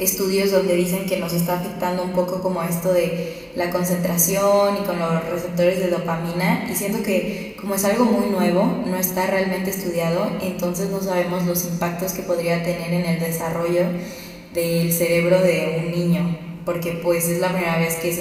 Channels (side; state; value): both; identical; correlation 1.00